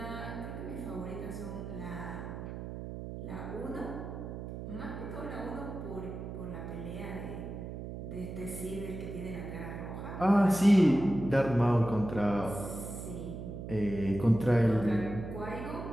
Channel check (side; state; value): right; noise; hum, 8 dB below the sound